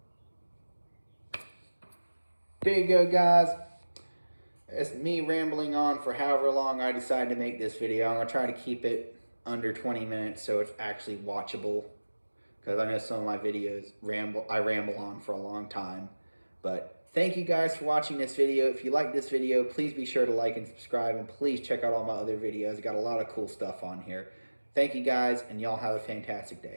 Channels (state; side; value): inverted; both; correlation -1.00